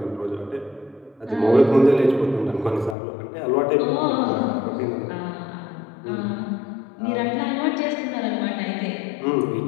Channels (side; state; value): right; drops out; at 3.0 s